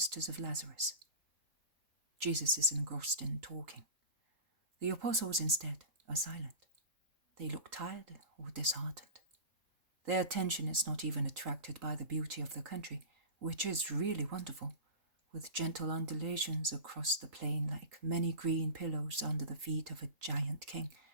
of Lazarus. Jesus is engrossed in talking. The apostles, instead, are silent. They look tired or disheartened. Their attention is not even attracted by the beauty of the country, which is really wonderful, with gentle undulations across the plain like many green pillows under the feet of a giant king,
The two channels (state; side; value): late; left; 3.9 ms